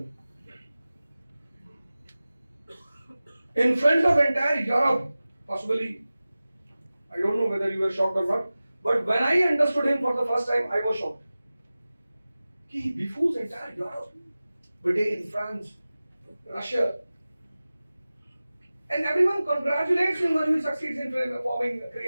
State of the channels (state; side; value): inverted; both; correlation -0.97